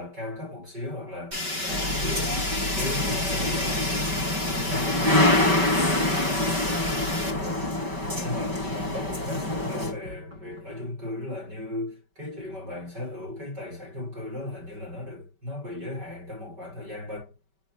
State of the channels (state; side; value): late; left; 5.2 ms